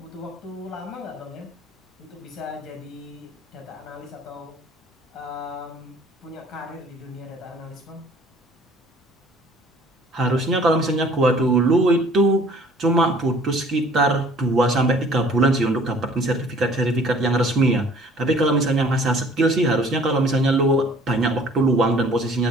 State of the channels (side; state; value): both; normal; correlation 0.53